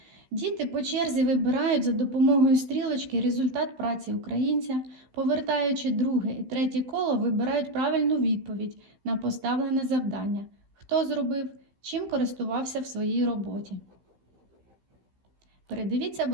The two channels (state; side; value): late; left; 15 ms